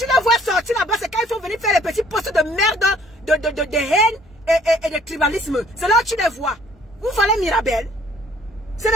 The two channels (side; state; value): both; normal; correlation 0.59